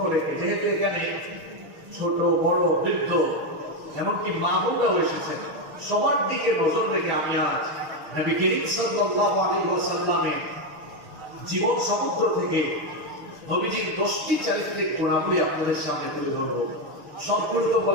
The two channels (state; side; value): late; left; 6.4 ms